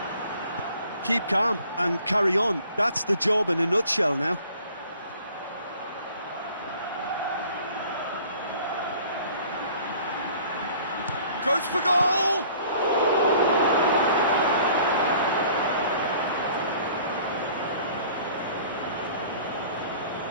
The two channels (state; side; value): inverted; both; correlation -0.52